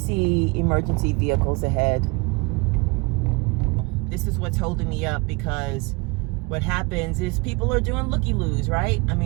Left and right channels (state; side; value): quieter; left; 27.5 dB